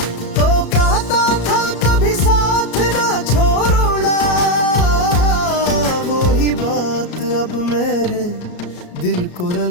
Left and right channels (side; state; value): right; late; 34 ms